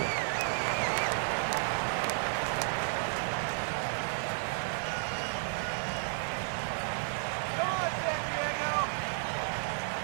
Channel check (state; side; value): silent; left; digital silence